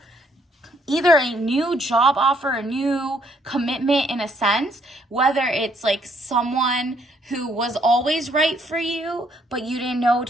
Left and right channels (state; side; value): normal; both; correlation 0.68